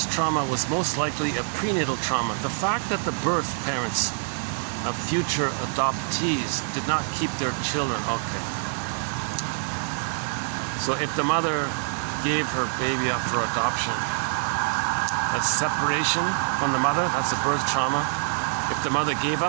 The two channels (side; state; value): left; silent; 61 dB below the other